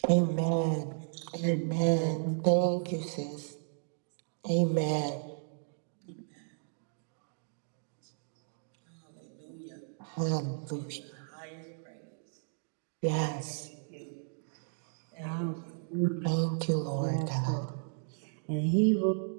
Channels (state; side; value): silent; left; digital silence